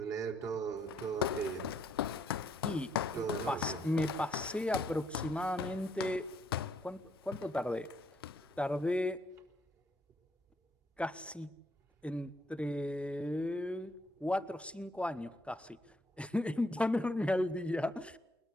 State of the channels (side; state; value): both; normal; correlation 0.71